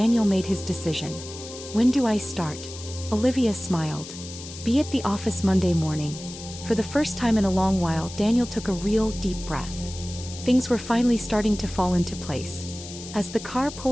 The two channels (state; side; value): noise; left; hiss, 13 dB below the sound